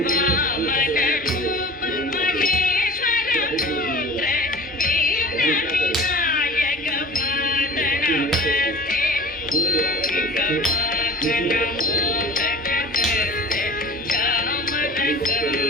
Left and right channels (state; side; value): normal; both; correlation 0.39